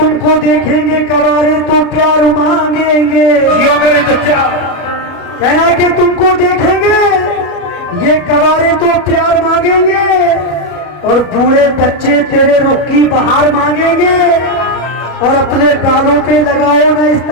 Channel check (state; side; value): late; right; 34 ms